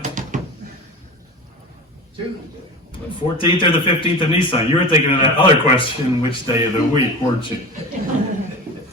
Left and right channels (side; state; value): both; normal; correlation 0.30